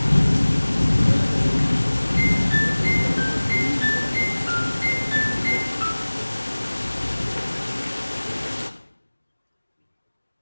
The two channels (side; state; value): both; inverted; correlation -1.00